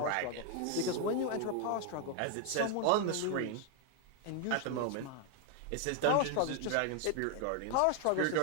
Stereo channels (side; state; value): both; different; correlation 0.01